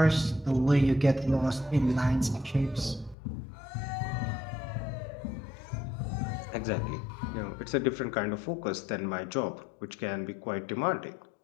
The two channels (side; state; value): right; drops out; at 3.2 s